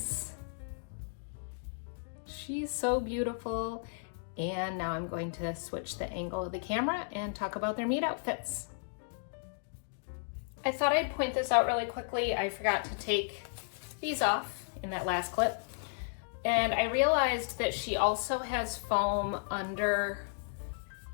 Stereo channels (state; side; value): silent; right; digital silence